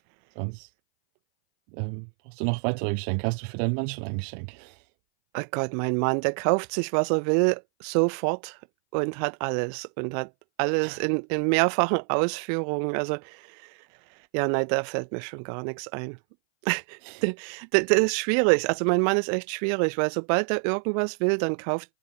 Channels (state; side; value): silent; left; 60 dB below the other